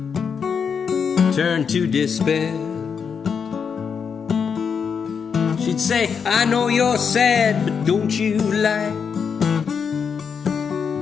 turned to despair. She'd say, I know you're sad, but don't you like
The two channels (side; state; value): right; quieter; 6.5 dB